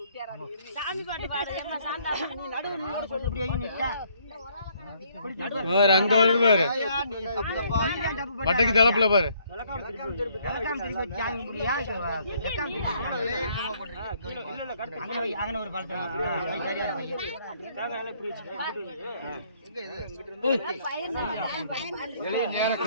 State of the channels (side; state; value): both; inverted; correlation -0.66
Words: அங்க வருது பாரு. பட்டைக்கு தலப்புல பாரு.